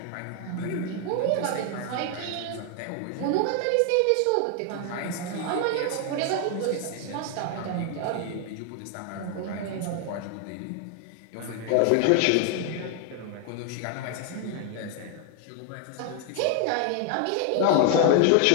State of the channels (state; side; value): different; both; correlation 0.00